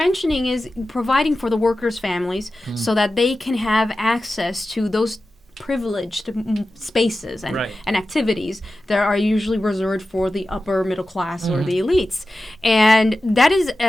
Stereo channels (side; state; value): both; normal; correlation 0.94